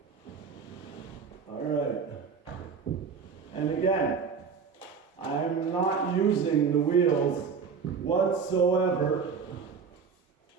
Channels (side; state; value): left; quieter; 5.8 dB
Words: All right. And again, I'm not using the wheels whatsoever.